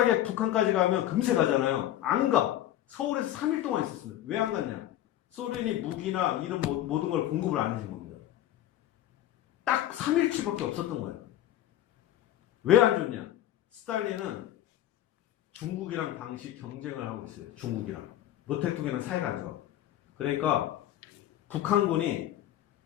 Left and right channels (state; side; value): quieter; right; 12.7 dB